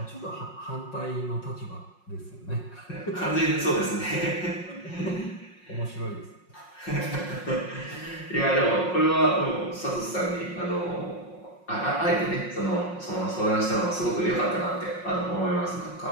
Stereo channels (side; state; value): right; late; 5.5 ms